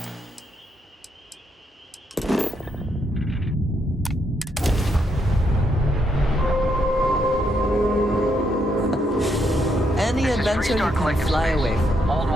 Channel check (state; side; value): normal; both; correlation 0.77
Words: Any adventure you can fly away from. Hold